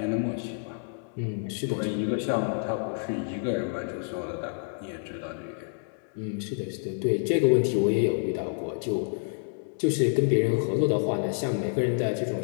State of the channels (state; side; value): silent; right; digital silence